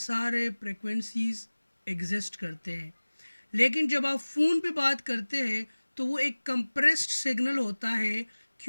फ्रिक्वेंसीज एग्जिस्ट करते हैं। लेकिन जब आप फ़ोन पे बात करते हैं तो वो एक कंप्रेस्ड सिग्नल होता है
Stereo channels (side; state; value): both; inverted; correlation -1.00